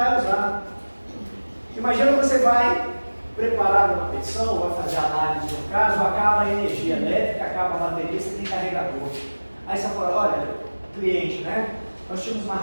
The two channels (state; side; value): inverted; both; correlation -1.00